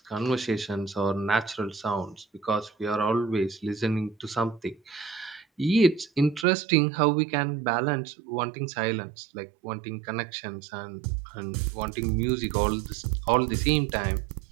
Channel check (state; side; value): drops out; left; at 6.5 s